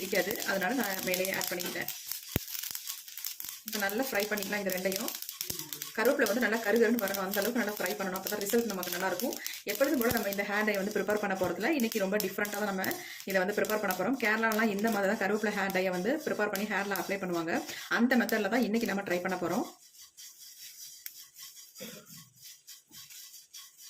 அதனால நான் மேலேயே ஆட் பண்ணிக்கிட்டேன். இப்போ நல்லா ஃப்ரை பண்ணிக்கலாம். இது ரெண்டையும் கருவேப்பிலை வந்து நல்லா கருன்னு வரணும். அந்த அளவுக்கு நல்லா ஃப்ரை பண்ணணும். அப்போ தான் ரிசல்ட் நமக்கு நல்லா இருக்கும். எப்பொழுதும் போல நம்ம இந்த ஹேர் டை வந்து ப்ரிப்பேர் பண்ண போகிறதுல இன்னைக்கு ரொம்ப டிஃப்ரெண்ட்டாக தான் நம்ம இதை வந்து ப்ரிப்பேர் பண்ண போகிறோம். கேரளாலாம் இந்த மாதிரி தான் கருவேப்பிலை ஹேர் டையை வந்து ப்ரிப்பேர் பண்ணி ஹேரில் அப்ளை பண்ணுவாங்க. அந்த மெத்தடில் தான் இன்னைக்கு நம்ம ட்ரை பண்ண போகிறோம்.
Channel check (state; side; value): identical; both; correlation 1.00